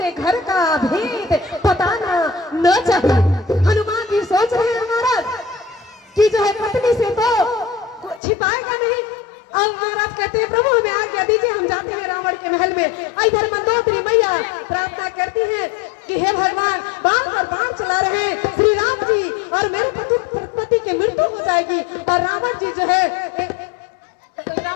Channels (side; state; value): right; drops out; at 8.2 s